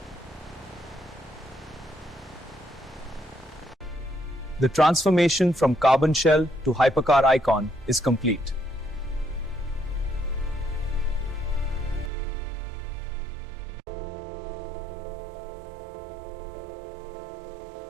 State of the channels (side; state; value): left; drops out; at 12.1 s